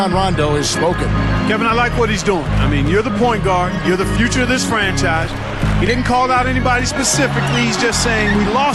Rondo has spoken. Kevin, I like what he's doing. I mean, you're the point guard. You're the future of this franchise. He didn't call out anybody specifically. He's just saying we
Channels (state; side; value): identical; both; correlation 1.00